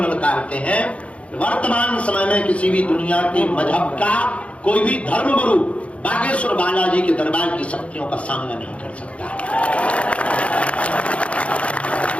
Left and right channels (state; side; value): late; right; 0.063 ms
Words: ललकारते हैं। वर्तमान समय में किसी भी दुनिया के मजहब का कोई भी धर्म गुरु बागेश्वर बालाजी के दरबार की शक्तियों का सामना नहीं कर सकता।